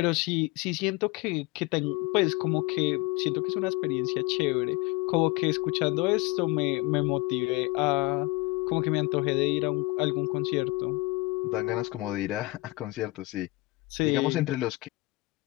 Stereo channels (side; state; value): right; quieter; 22.8 dB